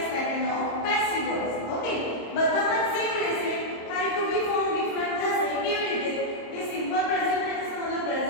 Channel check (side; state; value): right; late; 26 ms